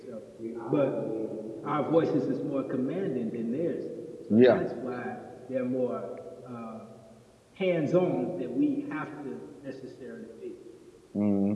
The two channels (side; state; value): both; identical; correlation 1.00